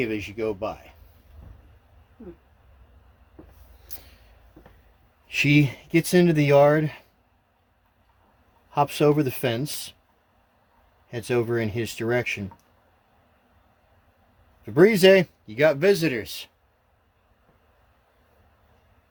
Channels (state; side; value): identical; both; correlation 1.00